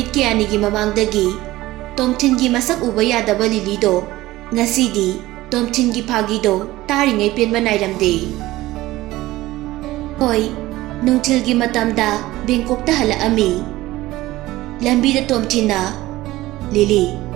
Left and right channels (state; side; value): quieter; left; 17.4 dB